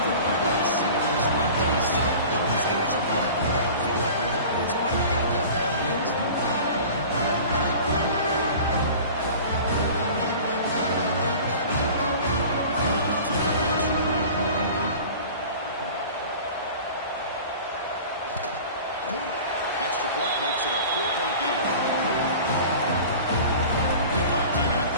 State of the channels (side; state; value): both; inverted; correlation -0.40